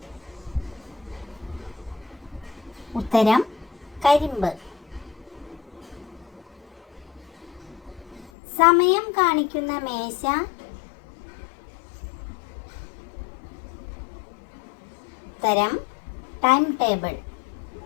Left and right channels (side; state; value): right; drops out; at 8.3 s